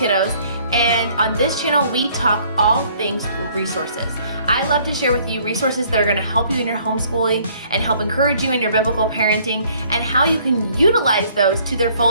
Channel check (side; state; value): both; inverted; correlation -0.60